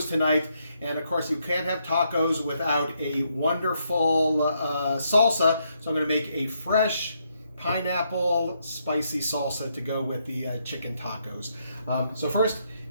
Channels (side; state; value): both; inverted; correlation -0.77